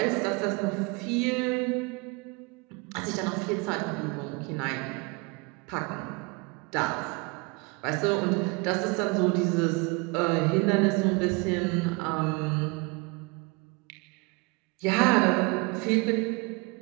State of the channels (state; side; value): quieter; left; 28.5 dB